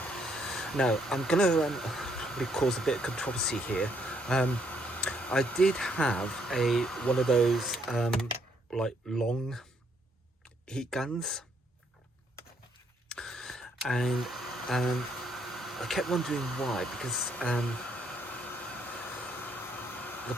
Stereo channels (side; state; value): both; normal; correlation 0.71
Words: Now I'm going to cause a bit of controversy here. I did have one of those like long heat guns, and I kept wondering why, because the